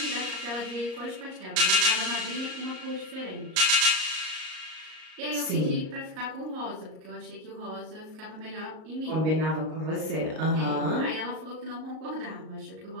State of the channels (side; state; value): left; late; 38 ms